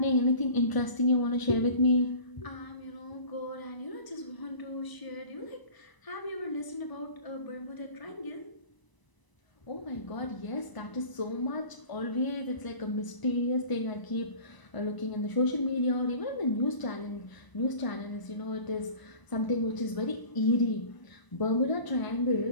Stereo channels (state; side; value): late; right; 1.0 ms